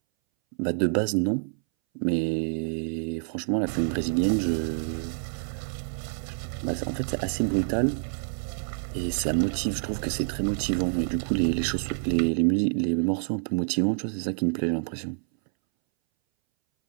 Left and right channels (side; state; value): left; silent; 60 dB below the other